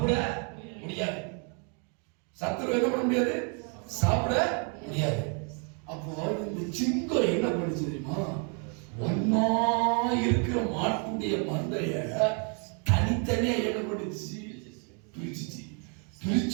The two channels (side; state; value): left; quieter; 38.7 dB